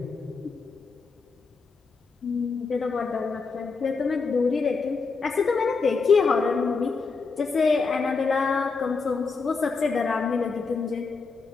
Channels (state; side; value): quieter; right; 4.6 dB